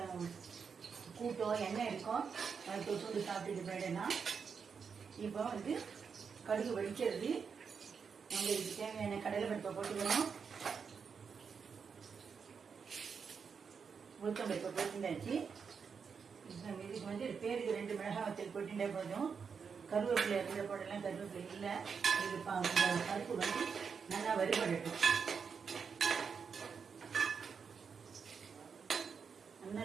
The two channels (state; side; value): quieter; left; 6.1 dB